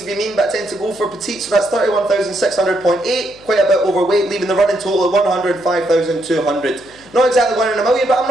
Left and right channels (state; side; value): noise; left; hum, 26 dB below the sound